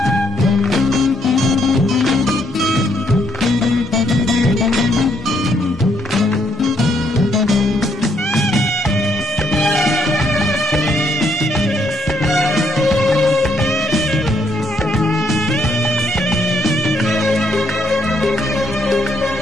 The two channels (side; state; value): both; normal; correlation 0.72